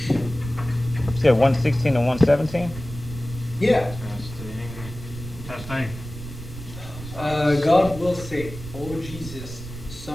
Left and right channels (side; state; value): right; noise; rumble, 12 dB below the sound